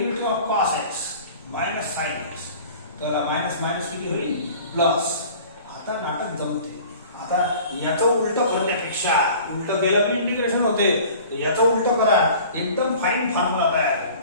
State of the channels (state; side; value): inverted; both; correlation -0.45